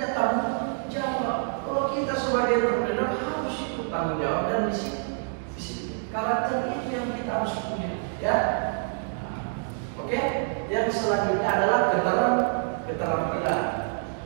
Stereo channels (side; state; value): left; silent; 60 dB below the other